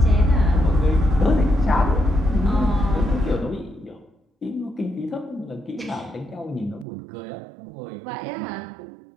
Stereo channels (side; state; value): left; drops out; at 6.9 s